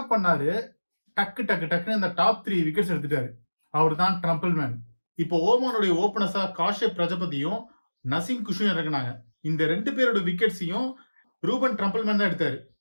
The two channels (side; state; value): both; inverted; correlation -1.00